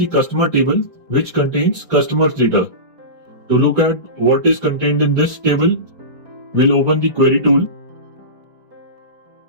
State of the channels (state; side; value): late; left; 4.3 ms